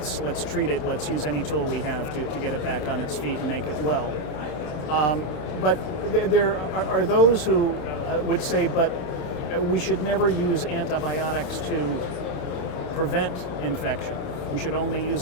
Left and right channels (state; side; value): late; right; 28 ms